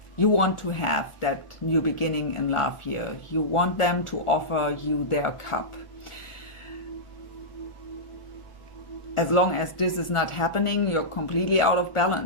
you want to have that new beginning in love here. You want them to offer you their cup. As long as this is not happening, you're completely out of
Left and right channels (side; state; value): right; late; 1.4 ms